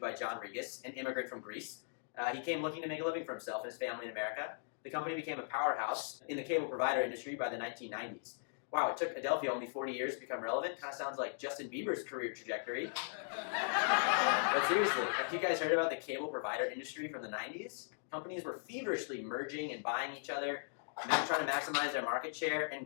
John Regas, an immigrant from Greece. He came looking to make a living for himself and his family in America. The company became a powerhouse in the cable provider industry by the 1990s. Wow, it took Adelphia only 40 years to become relevant. Kind of sounds like Justin Bieber's career trajectory. But seriously, have you guys heard about the cable provider industry from the 90s? Companies were feverishly merging and buying each other, trying to maximize their market share and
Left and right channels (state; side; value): silent; right; digital silence